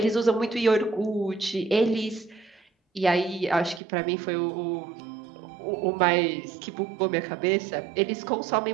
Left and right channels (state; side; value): drops out; left; at 3.8 s